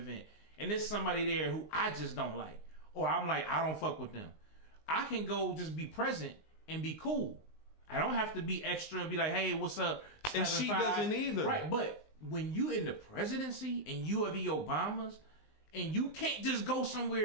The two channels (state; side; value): late; right; 19 ms